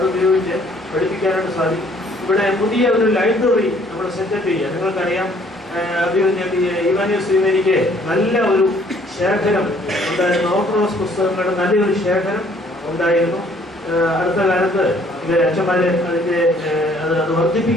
ഉപയോഗിച്ച് പഠിപ്പിക്കാനായിട്ട് സാധിക്കും. ഇവിടെ പുതിയ ഒരു ലൈബ്രറി നമ്മൾ സെറ്റപ്പ് ചെയ്യുക. നിങ്ങൾക്കറിയാം, ഇവാനിയോസ് നല്ല ഒരു ശേഖരം ഉണ്ടായിരുന്നു, ഓർത്തഡോക്സ് പുസ്തകങ്ങളുടെ നല്ലൊരു ശേഖരം ഉണ്ടായിരുന്നു. അടുത്ത കാലത്ത് അച്ഛന്മാർ അത്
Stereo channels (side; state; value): both; normal; correlation 0.61